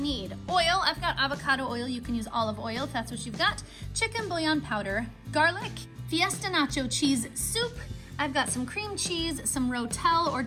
oil. I've got avocado oil. You can use olive oil if that's what you've got. Chicken bouillon powder, garlic, fiesta nacho cheese soup. I've got some cream cheese, some rotel or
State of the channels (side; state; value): both; identical; correlation 1.00